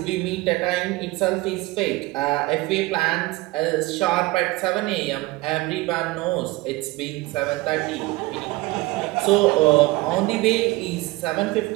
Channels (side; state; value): left; quieter; 21.0 dB